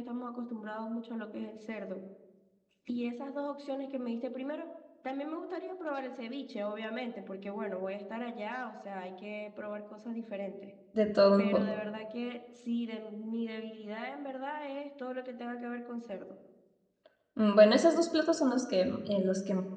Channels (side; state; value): both; identical; correlation 1.00